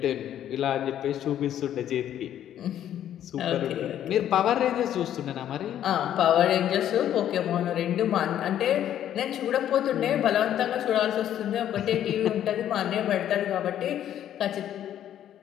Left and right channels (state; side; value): quieter; right; 10.9 dB